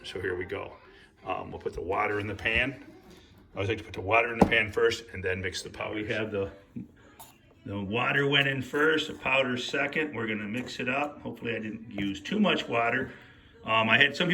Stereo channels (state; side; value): identical; both; correlation 1.00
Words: so here we go. We'll put the water in the pan. I always like to put the water in the pan first and then mix the powder. We have the water went in first, the powder second. We're gonna mix it up. Hopefully I didn't use too much water. I had some